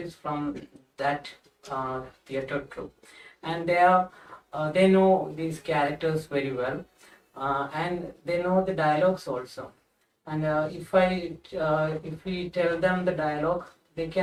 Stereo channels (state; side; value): identical; both; correlation 1.00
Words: from that theatre troupe, and they know these characters very well, and they know the dialogues also. And if we tell them the dialogue, they